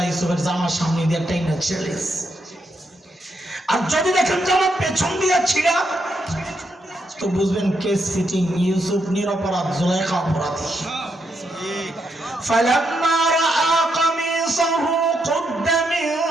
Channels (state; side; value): normal; both; correlation 0.80